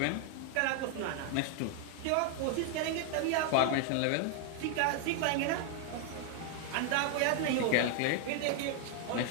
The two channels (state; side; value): different; both; correlation 0.00